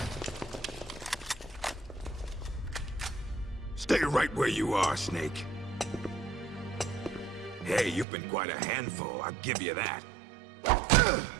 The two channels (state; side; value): drops out; left; at 8.1 s